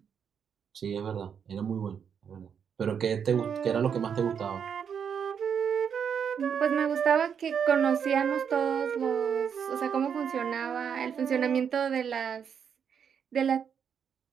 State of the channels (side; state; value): left; quieter; 7.4 dB